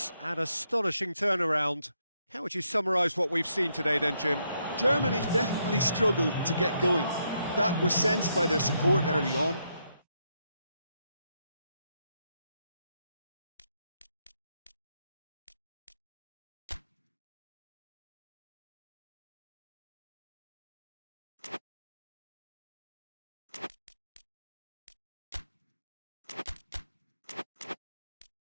and astonishing turnaround. How would you summarise what we've seen today then, Jim? Germany definitely struggled to get going. That was sensed by their support early on.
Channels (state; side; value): inverted; both; correlation -0.78